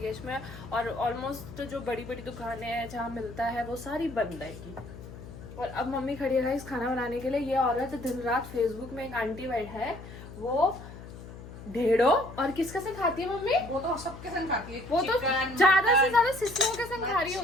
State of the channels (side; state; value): left; noise; hum, 14 dB below the sound